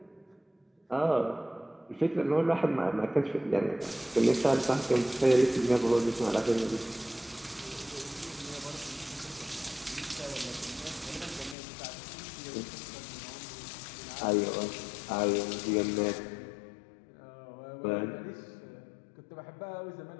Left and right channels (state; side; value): drops out; right; at 11.6 s